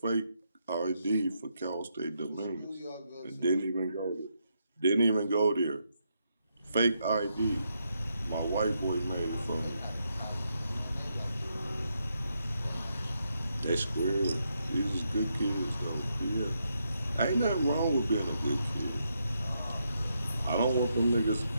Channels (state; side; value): inverted; both; correlation -0.80